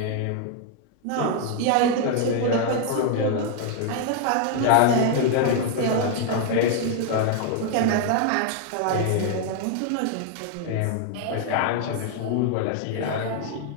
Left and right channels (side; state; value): both; different; correlation 0.00